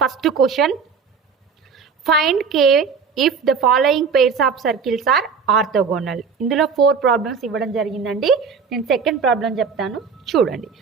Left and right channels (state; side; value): quieter; left; 5.8 dB